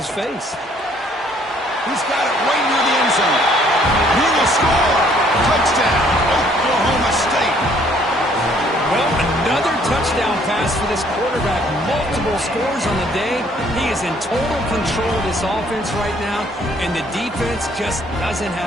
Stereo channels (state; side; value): normal; both; correlation 0.62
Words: face. He's got it right near the end zone. He will score. Touchdown, Oklahoma State. Well, another touchdown pass for this quarterback. Multiple scores on the day. He is in total control of this offense right now, and the defense just doesn't